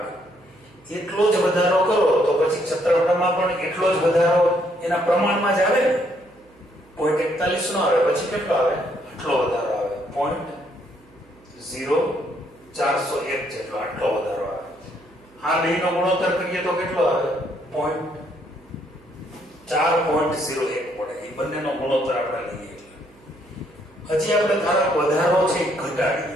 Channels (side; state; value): right; noise; hum, 29 dB below the sound